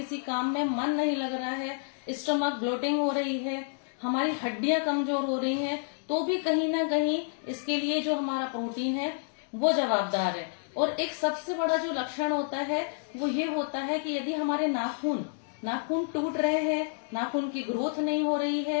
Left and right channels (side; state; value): right; silent; digital silence